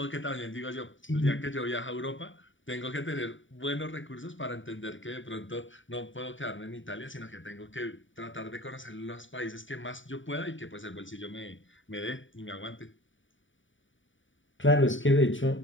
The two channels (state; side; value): late; right; 0.56 ms